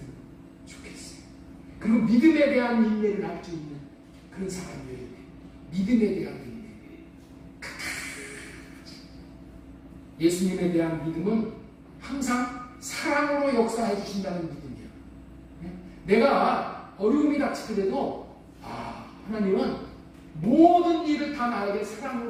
좋겠어요. 그리고 믿음에 대한 인내를 할 수 있는 그런 사람이어야 돼. 믿음에 대한 인내. 예수님에 대한 믿음은 항상 사랑으로 역사해 주신다는 믿음이야. 내가 어려움이 닥치더라도 하나님은 모든 일을 다 나에게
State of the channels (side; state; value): both; identical; correlation 1.00